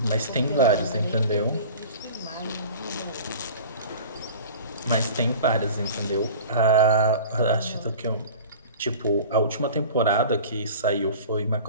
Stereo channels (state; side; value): inverted; both; correlation -0.39